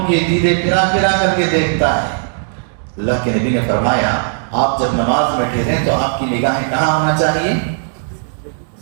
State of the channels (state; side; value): silent; left; digital silence